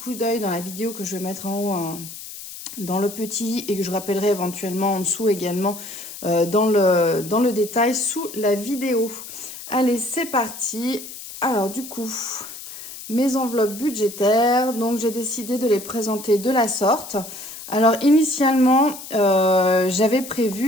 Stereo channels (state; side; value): noise; left; hiss, 12 dB below the sound